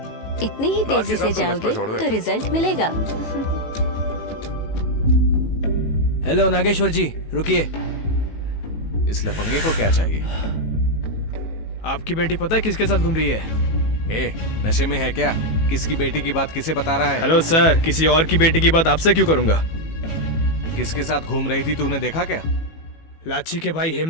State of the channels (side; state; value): right; late; 18 ms